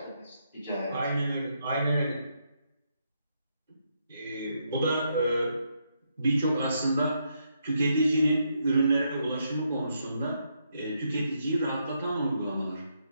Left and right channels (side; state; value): both; inverted; correlation -0.78